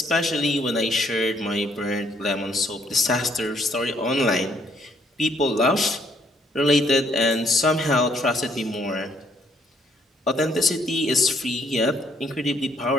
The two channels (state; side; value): normal; both; correlation 0.67